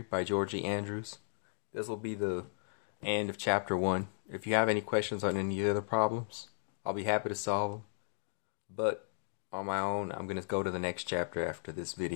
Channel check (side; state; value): right; silent; digital silence